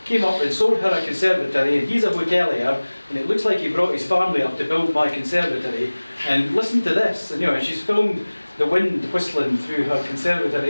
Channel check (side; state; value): both; inverted; correlation -1.00